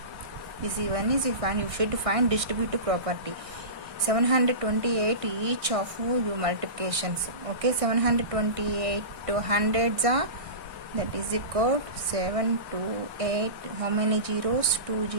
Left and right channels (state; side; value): late; left; 1.6 ms